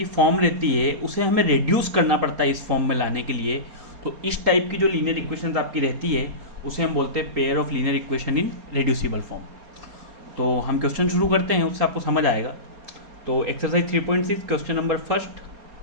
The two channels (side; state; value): left; late; 4.3 ms